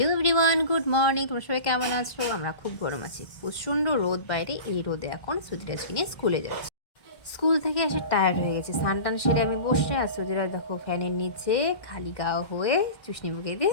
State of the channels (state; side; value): late; right; 1.5 ms